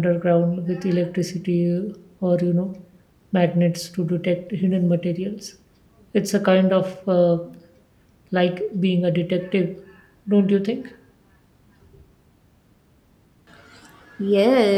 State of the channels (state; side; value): identical; both; correlation 1.00